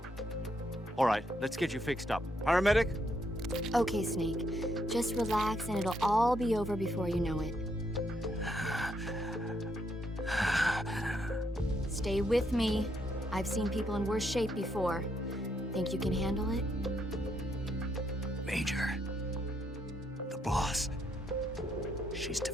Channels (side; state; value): both; normal; correlation 0.76